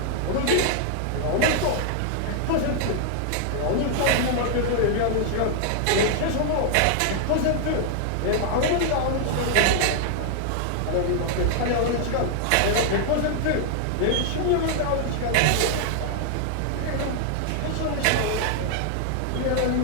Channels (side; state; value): both; different; correlation 0.00